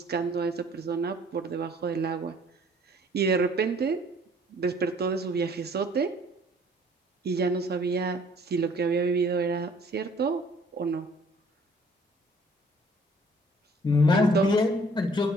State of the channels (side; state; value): both; normal; correlation 0.57